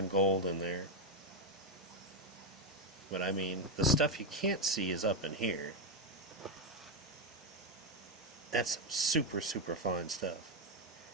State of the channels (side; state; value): both; normal; correlation 0.05